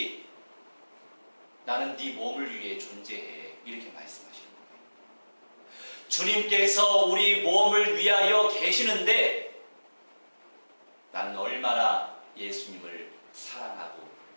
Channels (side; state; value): both; inverted; correlation -1.00